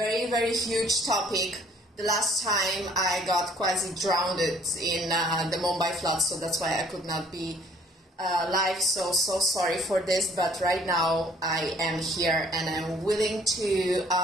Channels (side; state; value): both; normal; correlation 0.58